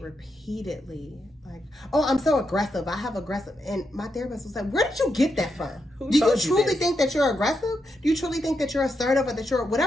like, oh, I'm so aggressive. I have aggressive. And my therapist was like, where did you get that from? Do you truly think that you're aggressive? Do you truly think that you're assertive, or that you're,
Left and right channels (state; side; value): normal; both; correlation 0.83